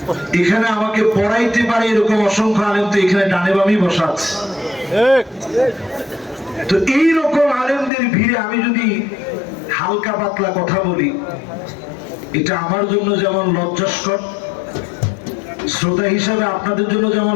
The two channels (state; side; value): drops out; right; at 7.9 s